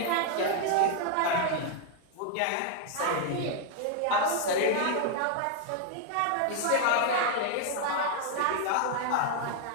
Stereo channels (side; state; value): both; different; correlation 0.00